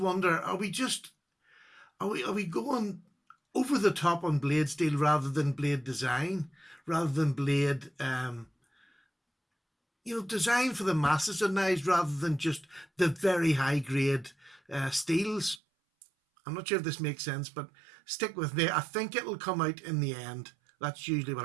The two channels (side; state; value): left; drops out; at 15.6 s